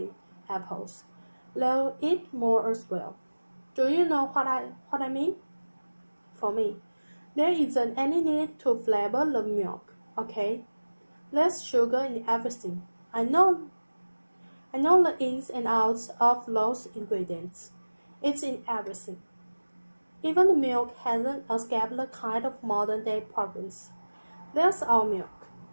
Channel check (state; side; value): inverted; both; correlation -1.00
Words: apples, they'll eat more as well. Do you know what I mean? For me, there isn't any need to flavor the milk, okay? Less sugar in everything. I know the ins and outs of those ingredients. It's in everything. Even the milk hasn't escaped the kind of modern-day problems. There's our milk.